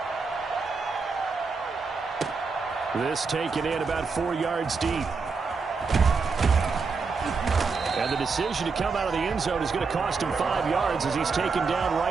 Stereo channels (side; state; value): left; quieter; 4.8 dB